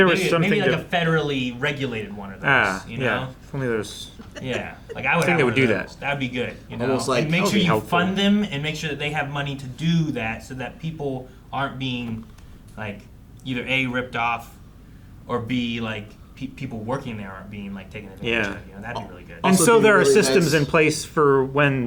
was something maybe like a federally regulated one of those. You know? Yeah. If only there's. Yeah. Like I would. I think they would do that. That'd be good. You know. Almost like, and make sure you fund them and make sure that they have money to do that, so that people aren't being like either A, ripped off, or B, like people working there aren't being like taken advantage of. You know, that'd be really good. And so there are systems in place for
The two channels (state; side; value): identical; both; correlation 1.00